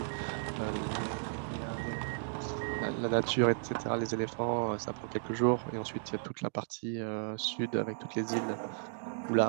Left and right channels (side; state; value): left; silent; digital silence